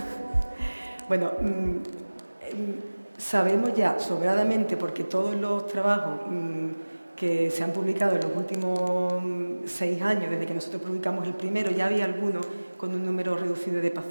Bueno, sabemos ya sobradamente, porque todos los trabajos que se han publicado en los últimos 6 años, desde que nosotros publicamos el primero, ya había algunos con un número reducido de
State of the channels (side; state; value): both; inverted; correlation -1.00